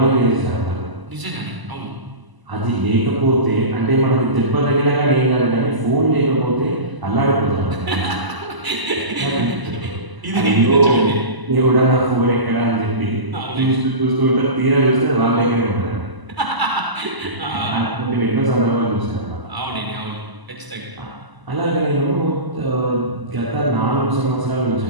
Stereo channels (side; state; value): left; late; 1.0 ms